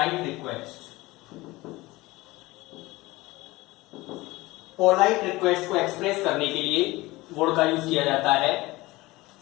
request, polite request को एक्सप्रेस करने के लिए वुड का यूज किया जाता है।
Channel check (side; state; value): right; quieter; 20.3 dB